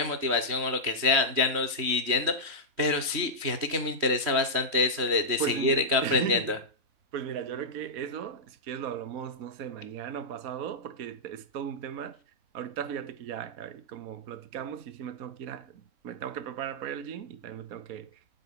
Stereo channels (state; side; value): late; left; 3.1 ms